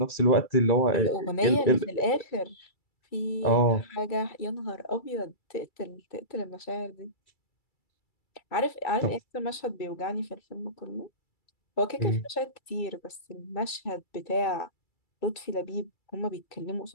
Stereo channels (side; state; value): right; late; 2.3 ms